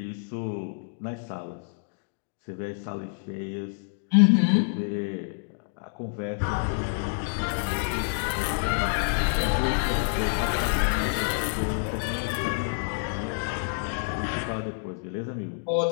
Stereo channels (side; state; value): right; silent; digital silence